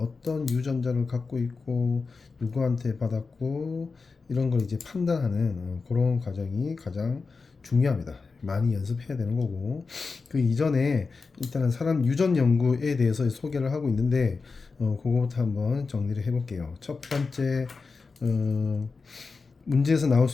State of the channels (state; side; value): quieter; right; 4.4 dB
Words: 유전자를 갖고 있고 누구한테 받았고 이런 걸 이제 판단하는 그런 과정이 가장 중요합니다. 많이 연습해야 되는 거고, 그 이전에 일단은 사람 유전 연구에 대해서 소개를 하고 있는데 그거부터 한번 정리를 해볼게요. 첫 번째, 문제에서 나올